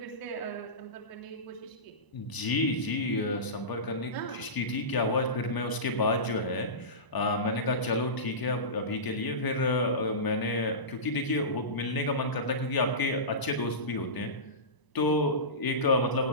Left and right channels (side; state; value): right; late; 1.0 ms